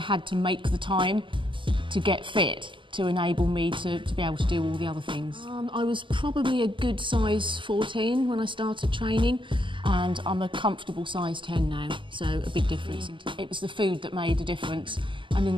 to make the time to get fit to enable me to be able to do all the other things. I was probably a good size 14 when I started training, and I'm a comfortable size 10 now, so a big difference. It was the food that made a difference, and in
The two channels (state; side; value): late; left; 0.24 ms